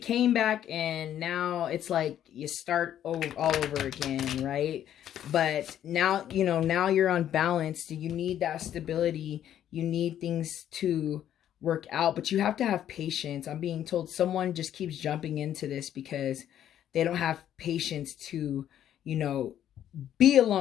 back and now it's like you start all over again, right? But now, you know, now you're unbalanced. You need that stability. You need things to work out, but you have to have patience. I'm being told someone just keeps jumping into this because they don't have patience to, you know, be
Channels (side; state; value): right; quieter; 10.8 dB